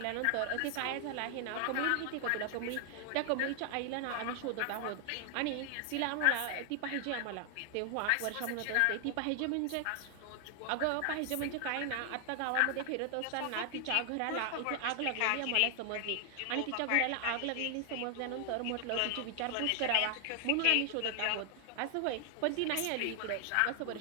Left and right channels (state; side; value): different; both; correlation 0.00